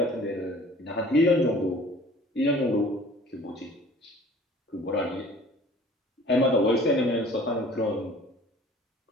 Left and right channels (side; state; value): both; normal; correlation 0.49